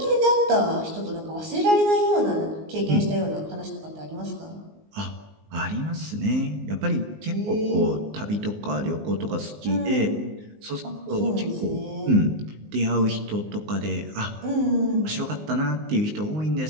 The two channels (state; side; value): late; left; 19 ms